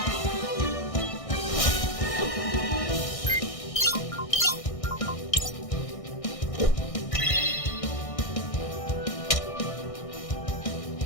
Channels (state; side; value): late; right; 1.6 ms